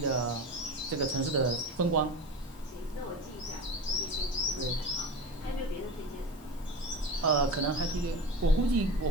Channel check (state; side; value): normal; both; correlation 0.30